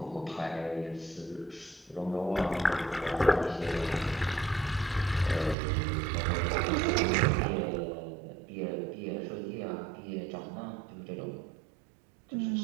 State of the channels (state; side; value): drops out; left; at 5.6 s